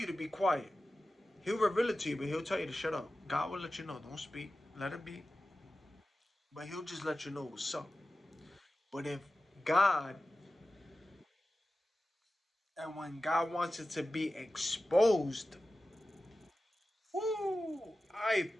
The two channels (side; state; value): both; normal; correlation 0.94